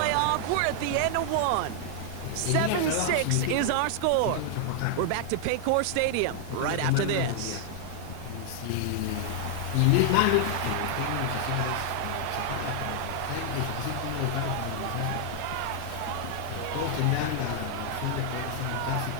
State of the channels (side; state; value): both; different; correlation -0.01